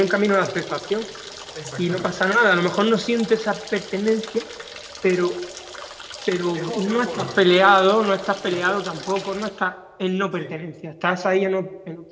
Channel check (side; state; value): both; identical; correlation 1.00